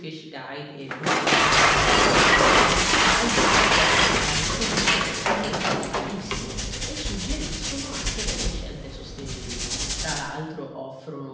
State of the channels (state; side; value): identical; both; correlation 1.00